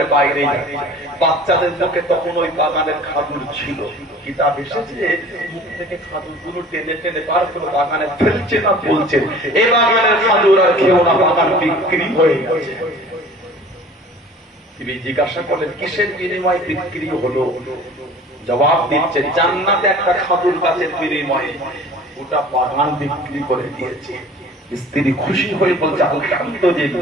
বাইরে যাচ্ছে। বাচ্চাদের মুখে তখন ওই বাগানের খাজুর ছিল। কিতাব এসেছে মুখ থেকে খাজুরগুলো টেনে টেনে বার করে বাগানে ফেলছে না বলছে এই বাগানের খাজুর আর কেউ না, বাগান বিক্রি হয়ে গেছে। তিনি জিজ্ঞাসা করলেন কিসের বিনিময়ে বিক্রি হলো? জবাব দিচ্ছে জান্নাতে একটা খাজুর গাছের বিনিময়ে গোটা বাগান বিক্রি করে দিয়েছে। স্ত্রী খুশি হয়ে বলছে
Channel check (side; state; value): both; normal; correlation 0.46